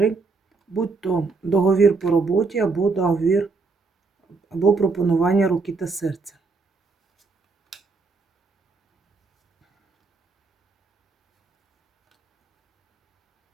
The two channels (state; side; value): quieter; left; 4.1 dB